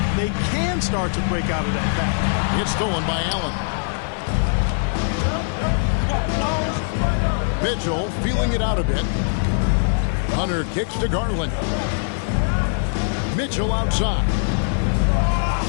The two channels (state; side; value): silent; right; 55 dB below the other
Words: they can start to break out of that pack. It's stolen by Allen. Mitchell feeling it out a bit. Hunter kicks to Garland. Mitchell outside.